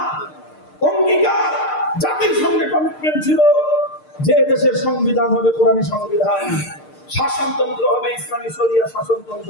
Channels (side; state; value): right; late; 6.6 ms